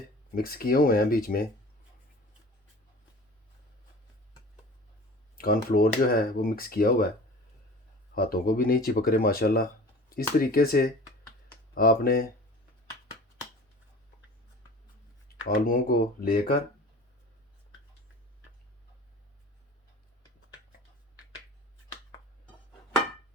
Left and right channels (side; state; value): both; normal; correlation 0.40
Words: मिक्स किए हुए हैं, बीच में कॉर्नफ्लोर जो है वो मिक्स किया हुआ है, हाथों को भी नहीं चिपक रहे माशाल्लाह। इस तरीके से आपने आलूओं को लेकर